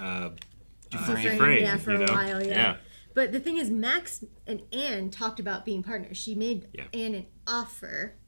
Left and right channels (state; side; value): inverted; both; correlation -1.00